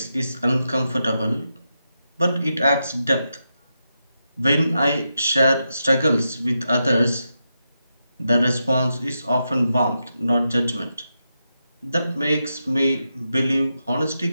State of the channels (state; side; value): inverted; both; correlation -0.86